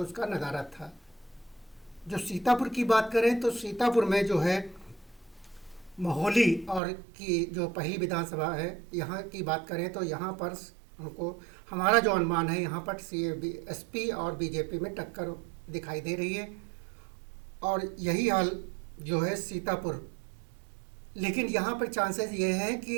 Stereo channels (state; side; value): drops out; left; at 6.8 s